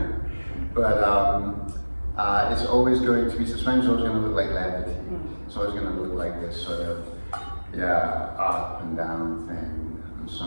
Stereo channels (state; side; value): inverted; both; correlation -1.00